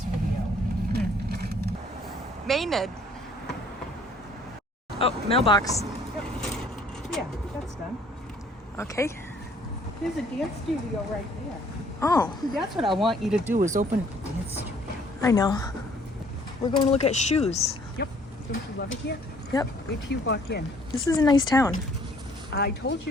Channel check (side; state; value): both; normal; correlation 0.59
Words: video. Maynard. Oh, mailbox. Yeah, that's done. Okay. There's a dance studio right there. Oh, That's what I want you to do is open a dance studio. I know. We're going to look at shoes. Yep. Don't you love it here? Yep. Wait till you walk in. This is a nice town. I told